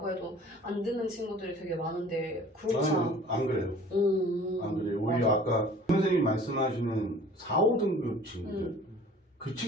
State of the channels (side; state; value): both; normal; correlation 0.49